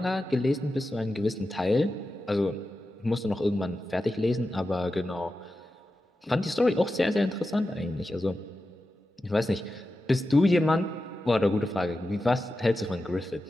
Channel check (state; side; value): normal; both; correlation 0.91